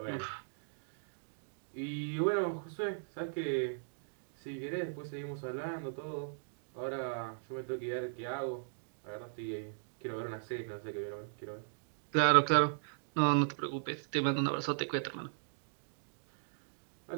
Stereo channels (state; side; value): silent; left; digital silence